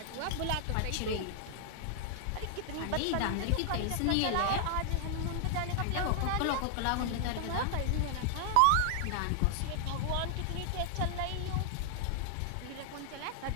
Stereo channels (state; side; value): different; both; correlation 0.00